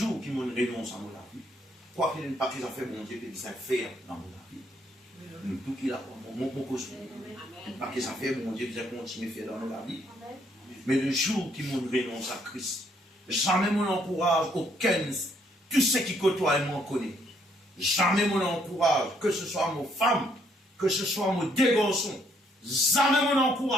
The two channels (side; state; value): both; normal; correlation 0.69